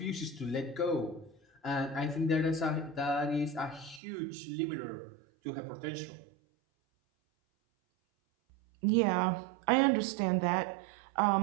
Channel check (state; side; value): drops out; left; at 4.0 s